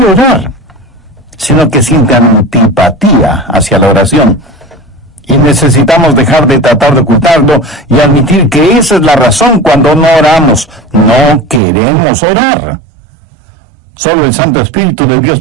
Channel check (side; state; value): left; drops out; at 11.6 s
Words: orar, sino que siente antipatía hacia la oración. Y necesitamos dejar de tratar de ocultarlo y admitir que esa es la razón cuando no oramos. No queremos orar. Solo el Santo Espíritu de Dios